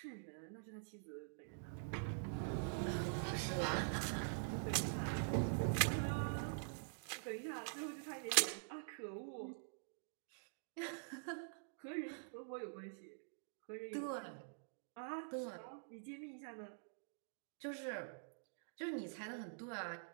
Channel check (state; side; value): silent; left; digital silence